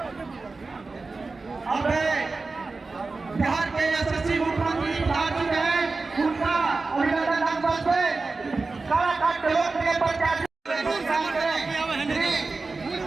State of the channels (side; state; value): left; quieter; 3.8 dB